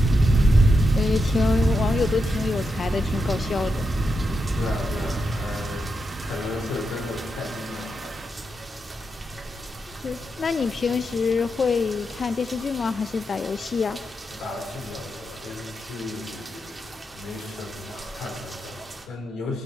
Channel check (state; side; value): normal; both; correlation 0.85